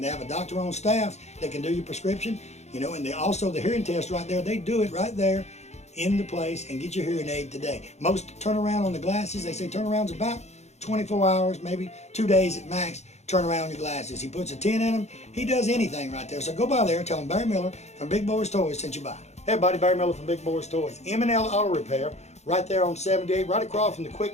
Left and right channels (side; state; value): right; late; 0.32 ms